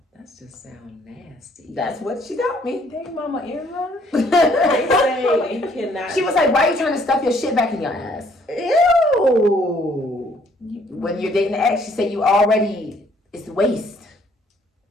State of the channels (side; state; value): both; normal; correlation 0.64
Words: That just sounds nasty. That's what she taught me. Dang, Mama Irma. They say you cannot. She was like, why are you trying to stuff your shit back in your ass? Ew. When you're dating an ex, she said you already, it's waste.